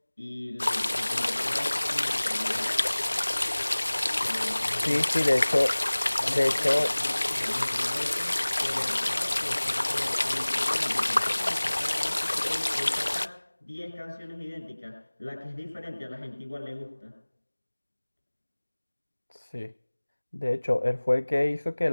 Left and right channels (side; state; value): both; inverted; correlation -1.00